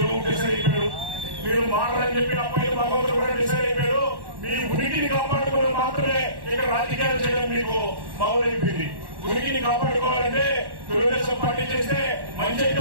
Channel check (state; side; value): late; left; 1.1 ms